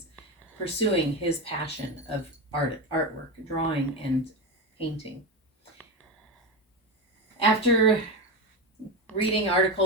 pursuing his passion of artwork, drawing, and painting. After reading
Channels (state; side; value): normal; both; correlation 0.16